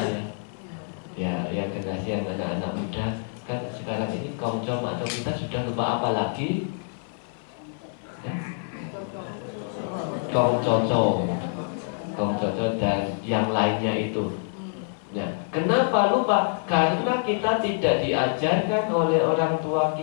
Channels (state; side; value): silent; right; 59 dB below the other